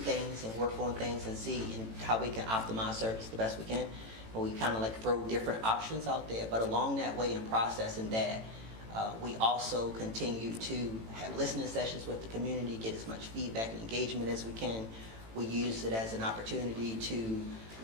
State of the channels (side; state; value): left; late; 18 ms